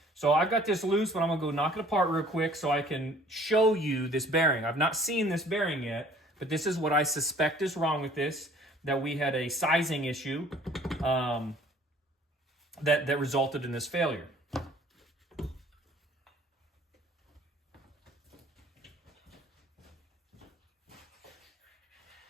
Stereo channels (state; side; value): normal; both; correlation 0.54